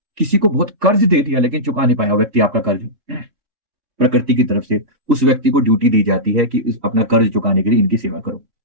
किसी को बहुत कर्ज दे दिया लेकिन चुका नहीं पाया व्यक्ति आपका कर्ज, प्रकृति की तरफ से उस व्यक्ति को ड्यूटी दी जाती है कि अपना कर्ज चुकाने के लिए इनकी सेवा करो,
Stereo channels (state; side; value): late; left; 3.6 ms